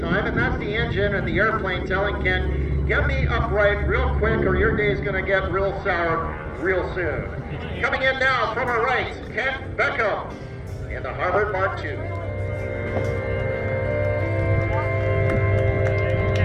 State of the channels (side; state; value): both; identical; correlation 1.00